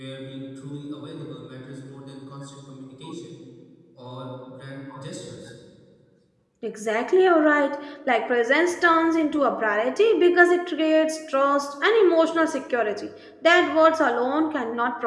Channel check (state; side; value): identical; both; correlation 1.00